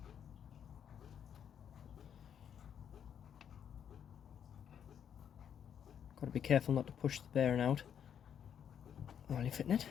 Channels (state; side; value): quieter; right; 8.5 dB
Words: Got to be careful not to push the bearing out while you're fitting it.